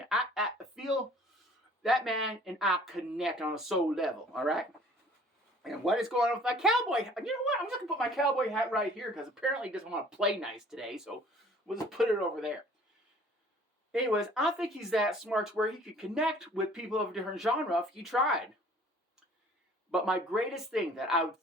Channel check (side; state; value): both; normal; correlation 0.53